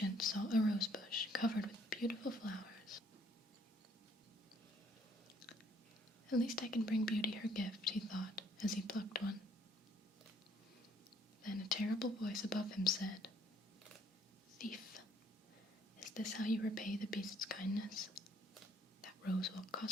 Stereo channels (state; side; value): normal; both; correlation 0.63